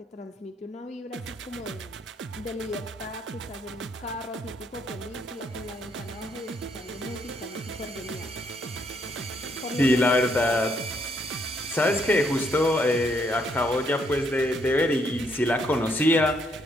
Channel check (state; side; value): normal; both; correlation 0.72